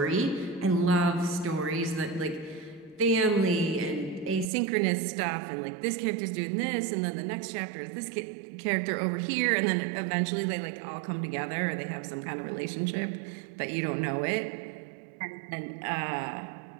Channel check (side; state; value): left; drops out; at 4.5 s